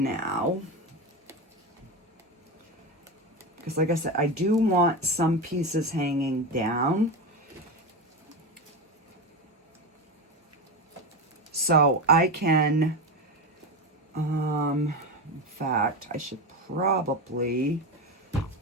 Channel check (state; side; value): normal; both; correlation 0.18